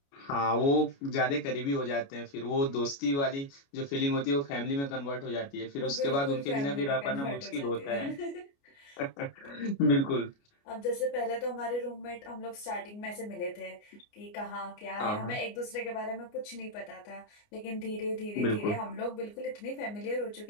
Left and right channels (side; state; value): right; late; 29 ms